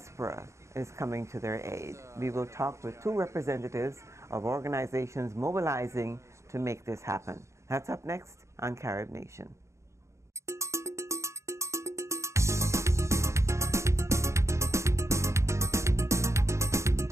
is coming to their aid. We will talk with two representatives of organizations mobilizing to make this happen. That's up next on Carib Nation.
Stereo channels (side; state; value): left; late; 0.14 ms